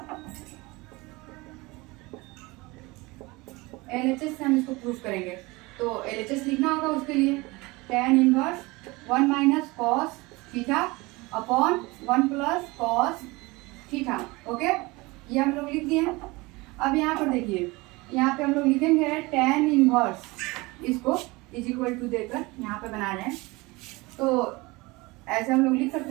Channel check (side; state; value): left; quieter; 23.3 dB